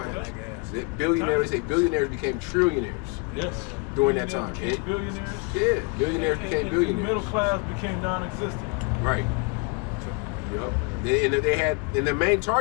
Billionaires, they say billionaires became trillionaires. Yes. During that time. Billionaires. Yeah, billionaires became billionaires. Middle class became non-existent. Right. Yep. And they had, and the main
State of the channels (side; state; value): right; quieter; 29.6 dB